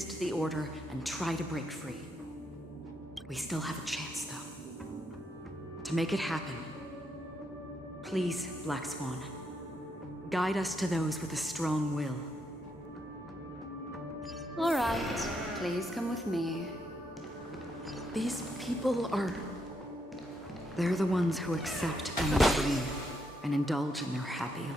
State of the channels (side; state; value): both; normal; correlation 0.78